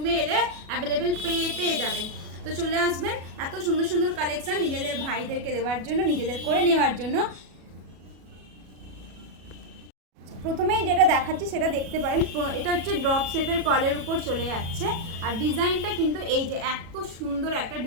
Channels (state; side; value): late; left; 37 ms